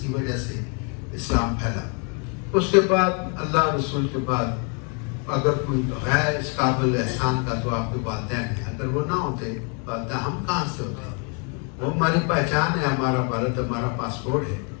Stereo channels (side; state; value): right; quieter; 37.5 dB